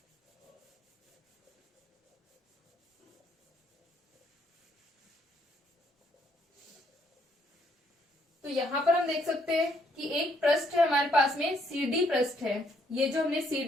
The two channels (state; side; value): normal; both; correlation 0.70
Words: तो यहाँ पर हम देख सकते हैं कि एक पृष्ठ है हमारे पास में, CD पृष्ठ है। ये जो हमने